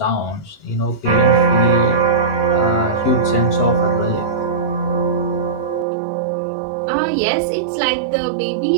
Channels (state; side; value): drops out; left; at 5.9 s